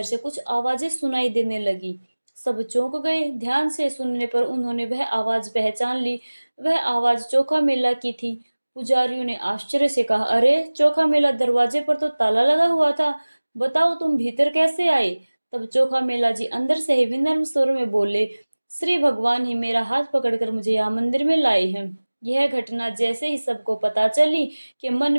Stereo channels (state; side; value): inverted; both; correlation -1.00